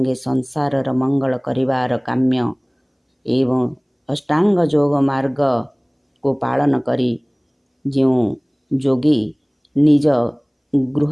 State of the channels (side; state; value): both; identical; correlation 1.00